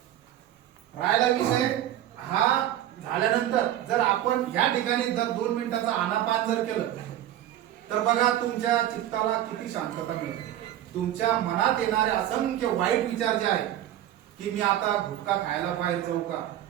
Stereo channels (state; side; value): quieter; left; 12.3 dB